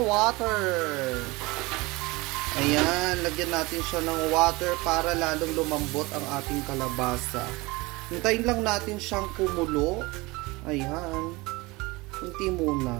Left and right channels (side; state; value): left; quieter; 23.1 dB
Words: water. Ayan, lagyan natin siya ng water para lalong lumambot ang ating kalabasa. Hintayin lang natin siyang kumulo. Ayan. Hinti muna.